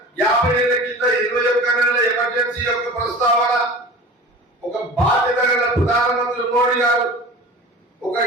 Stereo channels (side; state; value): both; normal; correlation 0.37